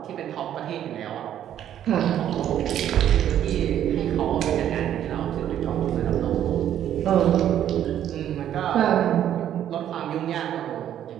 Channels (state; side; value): quieter; left; 10.7 dB